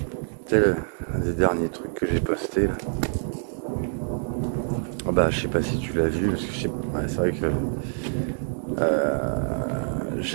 C'est un des derniers trucs que j'ai posté là. Ah bah, je sais pas si tu l'as vu, parce que je sais pas. Ouais, c'est vrai que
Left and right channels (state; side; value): silent; left; digital silence